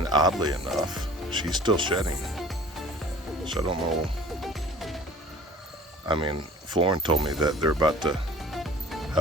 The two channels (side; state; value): both; normal; correlation 0.48